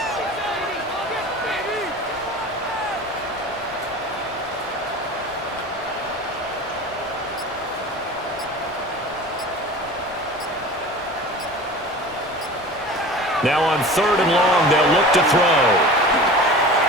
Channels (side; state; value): both; normal; correlation 0.37